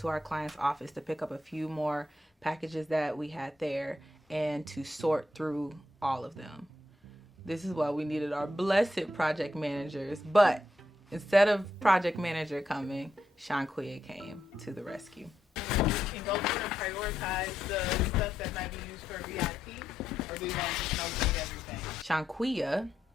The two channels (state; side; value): normal; both; correlation 0.81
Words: our client's office to pick up a few more packages that we had there and to sort through all of them. This is why we needed our blessed project managers, but instead of project manager coming, Shanquia came to the rescue. Can go through and prioritize the stuff that might be used for VIP, or do you want to just know everything? Shanquia